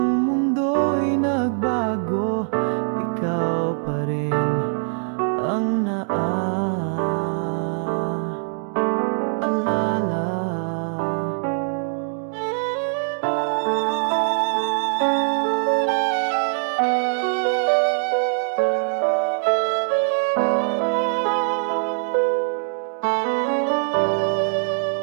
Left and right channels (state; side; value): silent; left; digital silence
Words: mundo'y nagbago, ikaw pa rin ang naaalala.